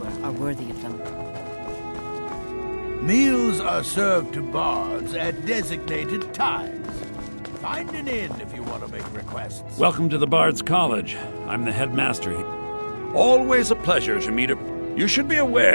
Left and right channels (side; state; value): both; inverted; correlation -1.00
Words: are worthy of them. Meals are served to bards at designated times. Find an inn if you want to make requests. Welcome to the Bard's College. I'm the headmaster here. Always a pleasure to meet a... You should be